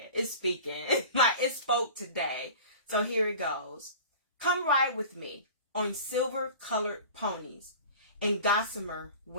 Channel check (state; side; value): inverted; both; correlation -0.39